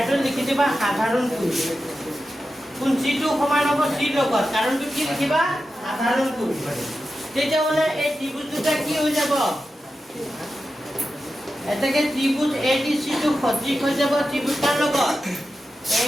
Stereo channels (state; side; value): normal; both; correlation 0.91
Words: লিখি দিবা সাধাৰণ কোণ কোন চিটো সমান হ'ব চিৰ লগত কাৰণটো কি লিখিবা সাধাৰণ কোণ তেতিয়া মানে এই ত্ৰিভুজ দুটা কি হৈ যাব এটাকে ত্রিভুজ এডিসি টু সদৃশ হৈ যাব ত্রিভুজ কার লগত